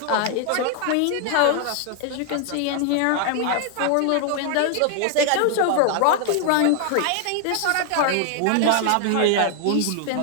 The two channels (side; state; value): both; different; correlation 0.00